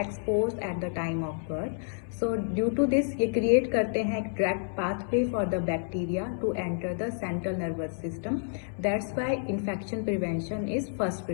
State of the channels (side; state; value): right; silent; 58 dB below the other